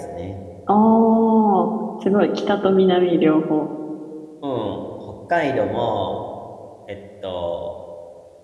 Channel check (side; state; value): both; identical; correlation 1.00